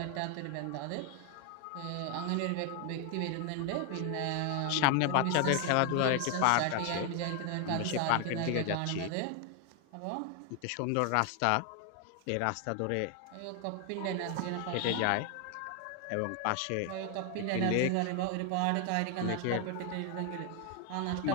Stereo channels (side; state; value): both; different; correlation 0.00